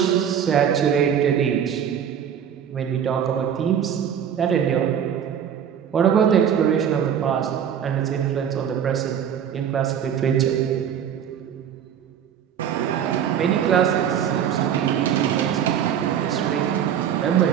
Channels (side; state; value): left; quieter; 8.8 dB